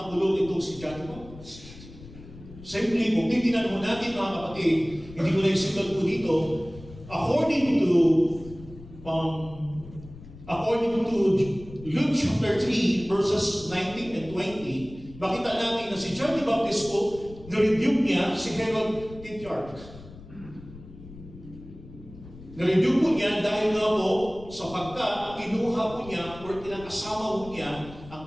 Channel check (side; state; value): left; noise; rumble, 17 dB below the sound